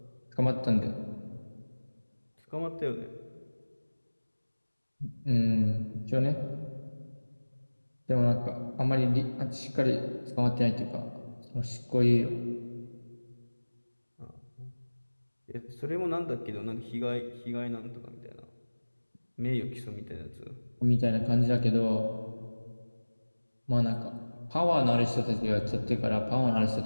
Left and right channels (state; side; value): inverted; both; correlation -1.00